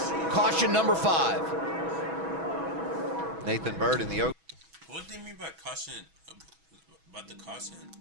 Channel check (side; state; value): left; late; 6.1 ms